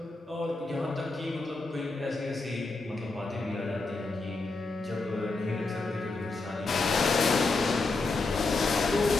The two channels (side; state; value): right; quieter; 3.5 dB